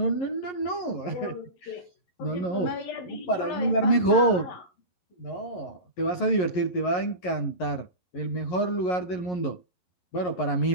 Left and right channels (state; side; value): late; right; 11 ms